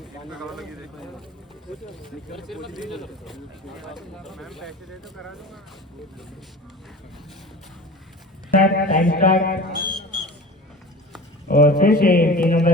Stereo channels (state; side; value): normal; both; correlation 0.37